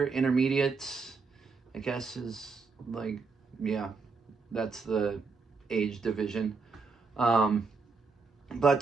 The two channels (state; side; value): quieter; left; 4.6 dB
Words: intermediates, I guess is like, yeah, that's the age division. But